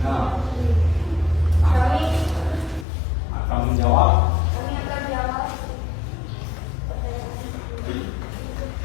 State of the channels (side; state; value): right; drops out; at 2.9 s